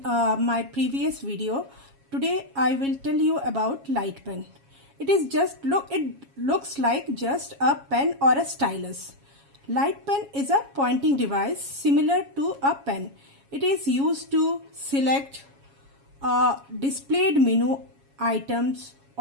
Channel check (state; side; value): late; left; 7.3 ms